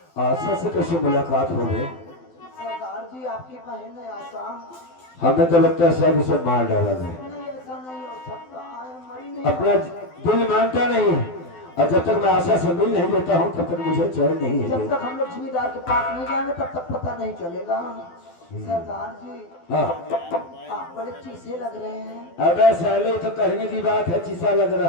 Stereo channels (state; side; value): late; right; 12 ms